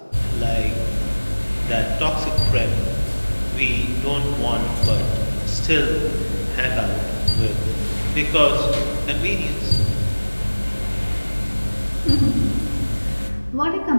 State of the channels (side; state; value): both; inverted; correlation -1.00